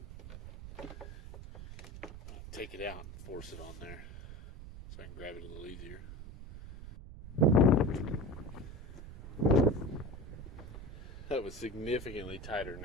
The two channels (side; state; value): right; noise; rumble, 12 dB below the sound